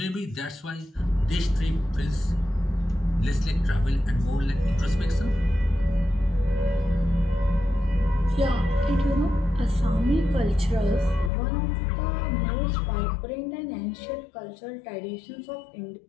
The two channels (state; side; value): drops out; right; at 11.3 s